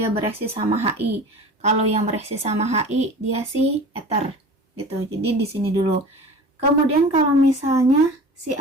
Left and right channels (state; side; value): normal; both; correlation 0.38